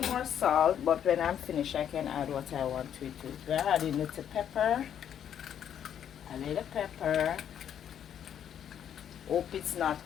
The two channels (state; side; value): quieter; right; 9.3 dB